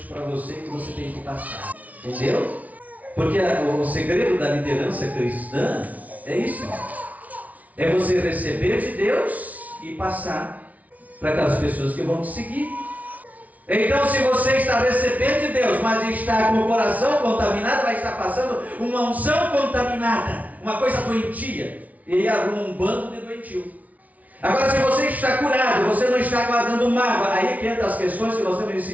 para você, que você tem que passar. Entendeu? Porque o segredo da liderança cristã é isso. É você receber de Deus e passar para aquelas pessoas que vão te seguir. Então se você está recebendo de Deus, mas está com o coração contaminado, vai estar passando uma unção contaminada, uma coisa doentia, e aí arruma um bando de doentio. Agora se você está curado, você não está guardando mágoa, aí que entra as questões que nós temos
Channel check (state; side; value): late; left; 0.071 ms